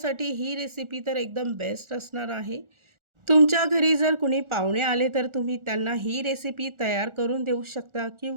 ही रेसिपी तर एकदम बेस्ट असणार आहे. तुमच्या घरी जर कुणी पाहुणे आले तर तुम्ही त्यांना ही रेसिपी तयार करून देऊ शकता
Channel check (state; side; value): late; left; 1.4 ms